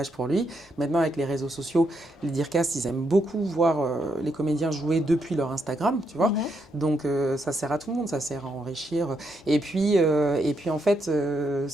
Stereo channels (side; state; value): both; normal; correlation 0.79